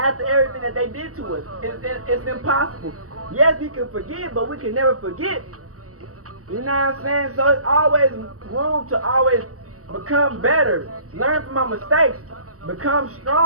everything that they did to us? It's impossible. Yes, we can forgive, but we can never forget. You know what I'm saying? So it's always room to always become better, learn from our mistakes, become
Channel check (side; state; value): left; late; 0.66 ms